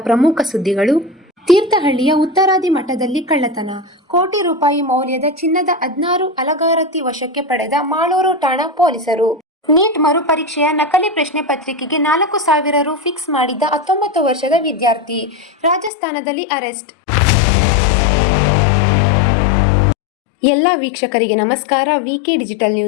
ಪ್ರಮುಖ ಸುದ್ದಿಗಳು. ತೀರ್ಥಹಳ್ಳಿಯ ಉತ್ತರಾದಿ ಮಠದಲ್ಲಿ ಕಳ್ಳತನ, ಕೋಟಿ ರೂಪಾಯಿ ಮೌಲ್ಯದ ಚಿನ್ನದ 16 ಅಲಗಾರತಿ ವಶಕ್ಕೆ ಪಡೆದ ಮಾಳೂರು ಠಾಣಾ ಪೊಲೀಸರು. ನೀಟ್ ಮರುಪರೀಕ್ಷೆಯ ನಕಲಿ ಪ್ರಶ್ನೆ ಪತ್ರಿಕೆಗೆ 4,000 ರು ಫಿಕ್ಸ್ ಮಾಡಿದ್ದ 19 ವರ್ಷದ ವಿದ್ಯಾರ್ಥಿ ರಾಜಸ್ಥಾನದಲ್ಲಿ ಅರೆಸ್ಟ್. ಎಲ್ಲ ವೀಕ್ಷಕರಿಗೆ ನಮಸ್ಕಾರ. ವಿಕೆ ಡಿಜಿಟಲ್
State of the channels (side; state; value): right; drops out; at 15.9 s